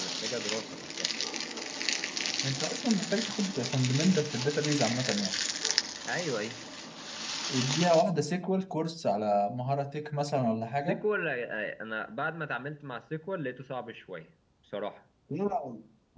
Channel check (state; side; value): identical; both; correlation 1.00